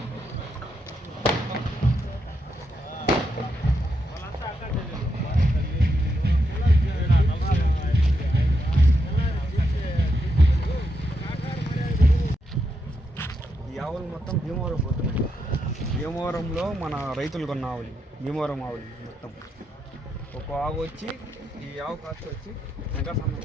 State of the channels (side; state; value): both; normal; correlation 0.82